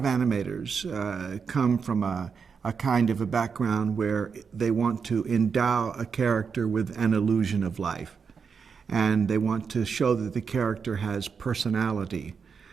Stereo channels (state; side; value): quieter; left; 6.0 dB